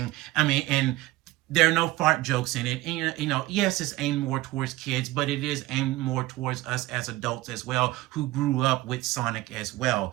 I mean, and there are no fart jokes in it. And, yes, it's aimed more towards kids, but it is aimed more towards us as adults as well, who grew up with Sonic as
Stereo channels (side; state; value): left; quieter; 17.9 dB